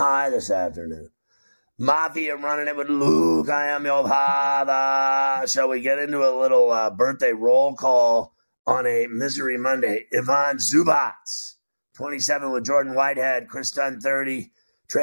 this afternoon. Mafia running it with Luke. I am your father. Shall we get into a little birthday roll call on a Misery Monday? Ivan Zubac, 27 with Jordan Whitehead. Chris Dunn, 30.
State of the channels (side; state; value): both; inverted; correlation -1.00